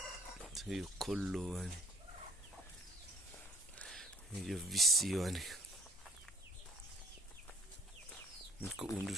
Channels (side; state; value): both; normal; correlation 0.57